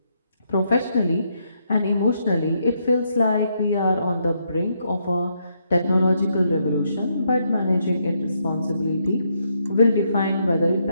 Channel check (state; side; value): inverted; both; correlation -0.76